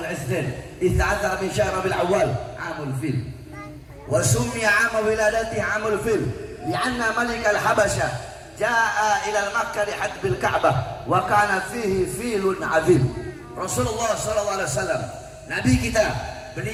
Itsnin 13 min syahr Rabiul Awwal amul fil. Wa summiya 'am wiladatihi 'amul fil li'anna malik al-Habasyah jaa ila Makkah li hadbil Ka'bah wa kana fihi filun 'azim. Rasulullah sallallahu alaihi wasallam, nabi kita,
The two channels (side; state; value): both; identical; correlation 1.00